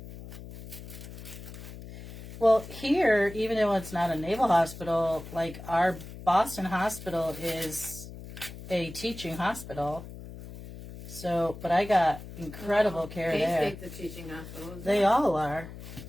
Well, here, even though it's not a naval hospital, like our Boston hospital is a teaching hospital. So, but I got incredible care there. K-State's a teaching hospital. They all are.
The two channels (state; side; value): noise; left; hum, 13 dB below the sound